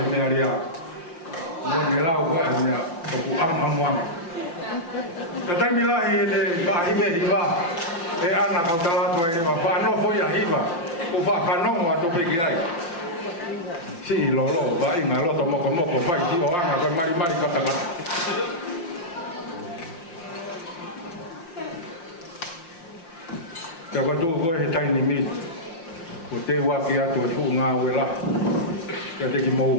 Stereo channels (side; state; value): right; late; 5.7 ms